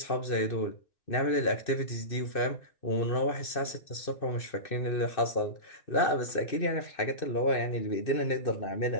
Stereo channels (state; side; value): late; right; 2.6 ms